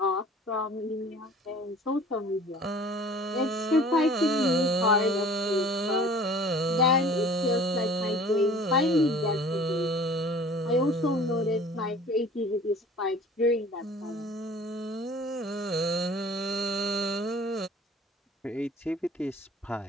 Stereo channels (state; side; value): normal; both; correlation 0.47